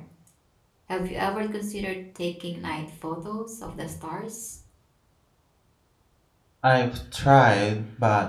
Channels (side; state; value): both; identical; correlation 1.00